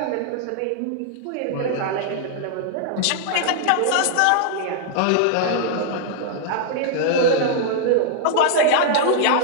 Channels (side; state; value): both; different; correlation -0.01